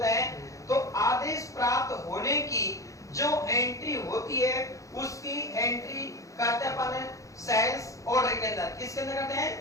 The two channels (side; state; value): right; late; 0.16 ms